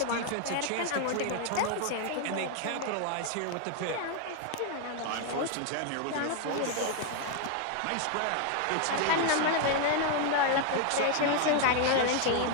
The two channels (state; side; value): different; both; correlation 0.00